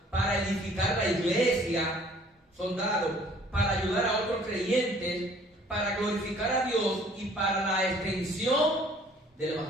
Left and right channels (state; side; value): normal; both; correlation 0.56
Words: para edificar la iglesia, son dados, para ayudar a otros creyentes, para glorificar a Dios y para la extensión del